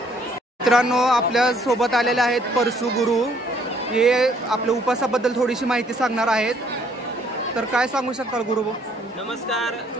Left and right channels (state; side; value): normal; both; correlation 0.64